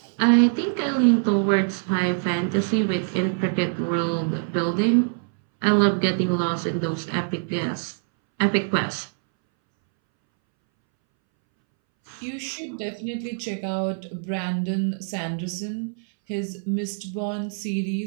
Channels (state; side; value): silent; left; 62 dB below the other